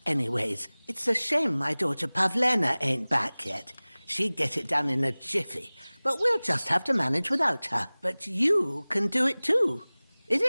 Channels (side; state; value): both; inverted; correlation -1.00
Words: anyways. It's a shame my daughter Pavlena ain't back yet. She'd get it done in a jiffy. But we'll just have to manage without her. But you can do it too. It